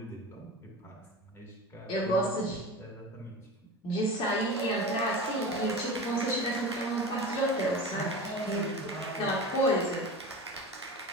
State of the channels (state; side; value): normal; both; correlation 0.30